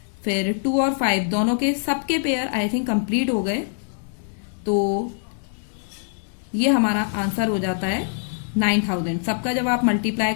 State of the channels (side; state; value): right; silent; digital silence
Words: फिर 2 और 5 दोनों के सबके पेयर आई थिंक कंप्लीट हो गए. तो ये हमारा आंसर हो जाता है 9,000. सबका जब आप मल्टीप्लाई